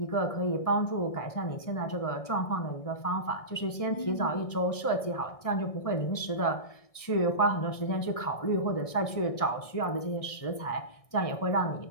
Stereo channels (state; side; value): late; right; 1.6 ms